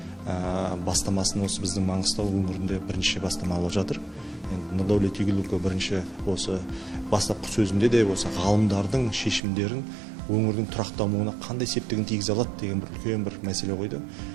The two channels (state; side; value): drops out; left; at 9.4 s